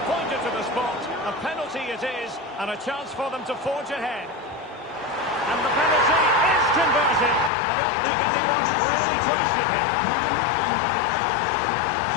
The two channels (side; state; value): right; drops out; at 7.5 s